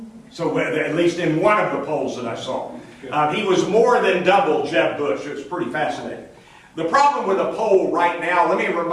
So at least in one of the polls that I saw. He was more than double Jeb Bush. It was pretty fascinating. The problem with the poll right now, let me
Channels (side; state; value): both; identical; correlation 1.00